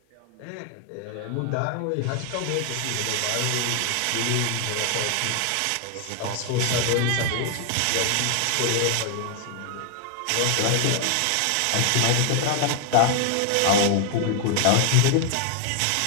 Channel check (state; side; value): different; both; correlation 0.00